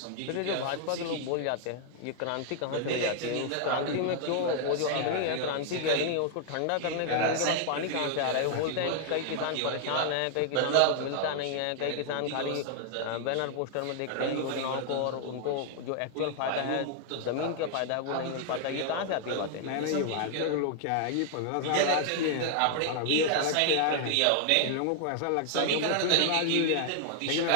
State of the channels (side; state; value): both; different; correlation 0.00